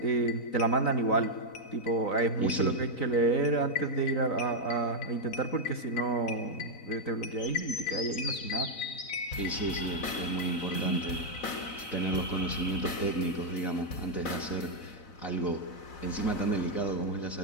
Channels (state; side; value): late; right; 3.9 ms